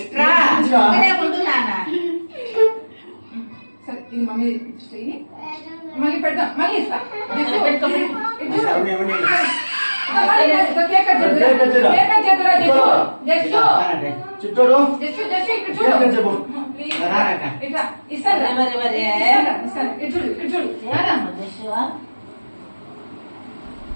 ఇట్రా ఇక్కడే ఉండు నాన్న. సరే, ఇది మమ్మీ ఇచ్చేయి. మళ్ళీ పెడదాం. మళ్ళీ ఇస్తా. పెట్టుకో. ఇది చూడు. అవునే అవునే కేక్ కట్ చేద్దురా. కేక్ కట్ చేద్దాం. కేక్ కట్ చేద్దురా, జస్ట్. చిట్టోడు జస్ట్ ఇక్కడ కేక్ కట్ చూడు. చెప్పు. ప్లీజ్. రారక్క. ఇట్లా ఇస్తాను. వరే వరే ఇస్తాను. ఇటు చూడు, ఇటు చూడు. ఏదమ్మా దశవా?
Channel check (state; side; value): inverted; both; correlation -1.00